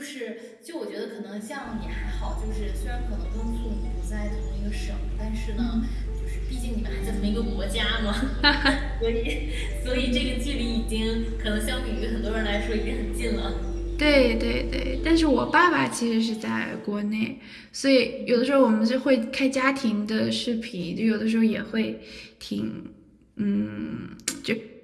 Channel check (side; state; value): both; identical; correlation 1.00